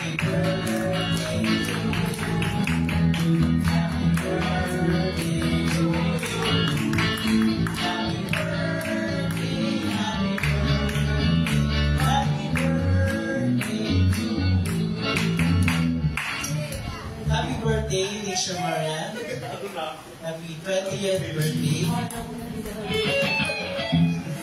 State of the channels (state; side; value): identical; both; correlation 1.00